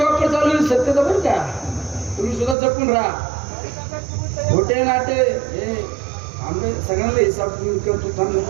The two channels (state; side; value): drops out; left; at 2.6 s